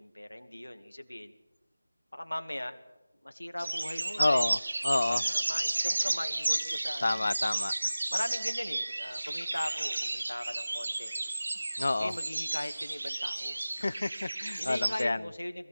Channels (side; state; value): both; inverted; correlation -0.97